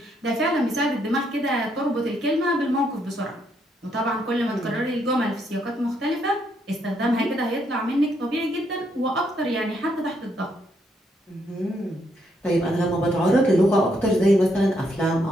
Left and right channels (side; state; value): both; normal; correlation 0.75